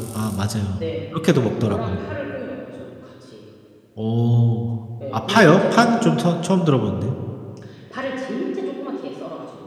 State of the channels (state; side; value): identical; both; correlation 1.00